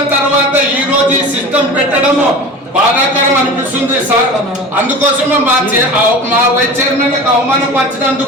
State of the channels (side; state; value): both; normal; correlation 0.34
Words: తర్వాత ఈ రోజు ఈ సిస్టమ్ పెట్టడము బాధాకరం అనిపిస్తుంది సార్. అందుకోసమే మా వైస్ చైర్మన్